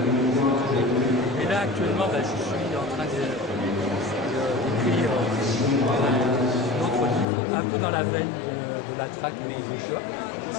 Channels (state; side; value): drops out; right; at 7.2 s